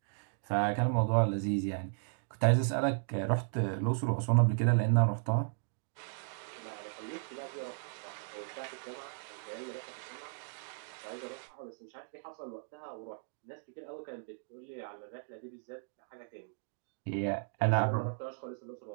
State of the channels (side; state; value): left; silent; digital silence